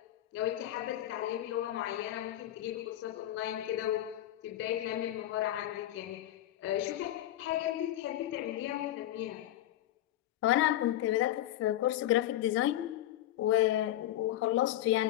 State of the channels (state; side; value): quieter; right; 13.5 dB